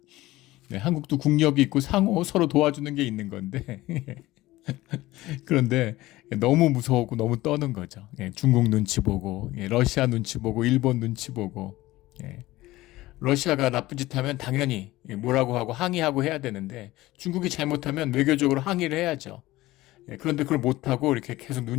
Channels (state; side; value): quieter; right; 17.8 dB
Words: 한국도 국력이 있고 상호 서로 도와주는 게 있는 건데 그런데 너무 무서웠고 너무 떠는 거죠. 중국 눈치 보고, 러시아 눈치 보고, 일본 눈치 보고. 러시아가 나쁜 짓 하면 당연히 뭐라고 하고 항의하고 해야 되는데, 중국이 잘못하면 외교적으로 항의를 해야죠. 그런데 그걸 못하고 이렇게 계속